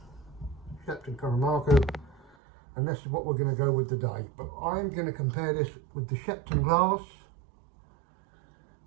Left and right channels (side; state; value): left; drops out; at 2.4 s